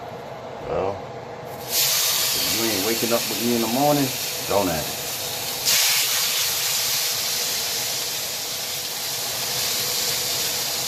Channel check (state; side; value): identical; both; correlation 1.00